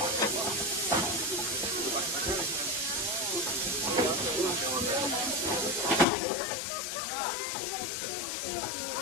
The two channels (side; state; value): right; drops out; at 6.1 s